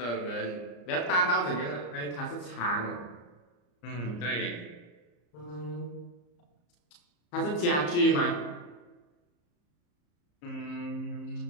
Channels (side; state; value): right; late; 34 ms